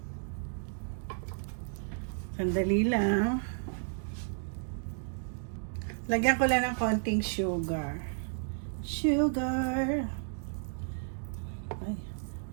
Sandali lang. Lagyan ko lang ng konting sugar. Sugar. Ay,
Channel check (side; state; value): left; silent; digital silence